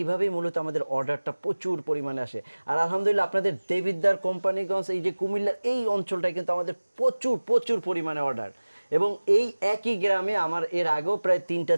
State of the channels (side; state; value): both; inverted; correlation -1.00